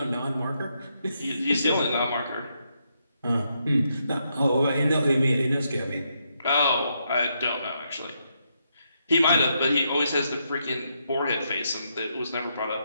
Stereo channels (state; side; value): inverted; both; correlation -0.79